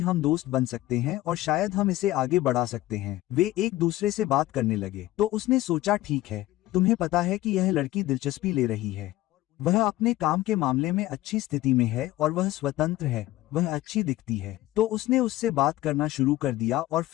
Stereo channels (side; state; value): right; quieter; 16.3 dB